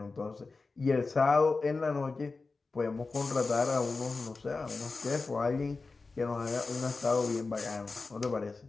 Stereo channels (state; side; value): quieter; right; 4.0 dB